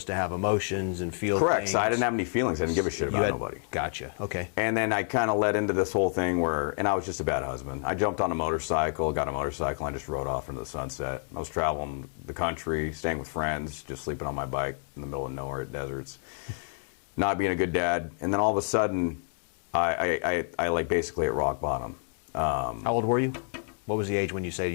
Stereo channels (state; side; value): silent; right; 59 dB below the other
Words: to have emotions and feel Correct. things. So I didn't have any feelings. I didn't give a shit about nobody. Gotcha. Okay. And then I kind of led into this whole thing and I was just a bad husband. I jumped on a motorcycle, got a motorcycle, and I just rode off into the sunset. I was traveling the country, staying with friends, just sleeping on my bike in the middle of nowhere at deserts, not being a good dad. And then all of a sudden, I basically at rock bottom. How old were you? What was the age when you say